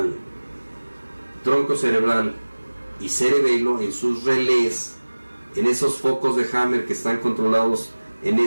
tronco cerebral y cerebelo, en sus relés, en esos focos de Hammer que están controlados en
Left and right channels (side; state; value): both; inverted; correlation -1.00